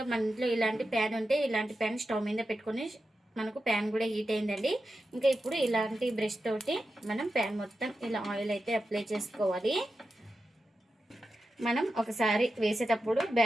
మన ఇంట్లో ఇలాంటి ప్యాన్ ఉంటే ఇలాంటి ప్యాన్ స్టవ్ మీద పెట్టుకొని, మనకు ప్యాన్ కూడా హీట్ అయిందండి. ఇంకా ఇప్పుడు ఇలాంటి బ్రష్ తోటి మనం ప్యాన్ మొత్తం ఇలా ఆయిల్ అయితే అప్లై చేసుకోవాలి. మనం ఒకసారి వేసేటప్పుడు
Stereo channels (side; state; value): both; normal; correlation 0.90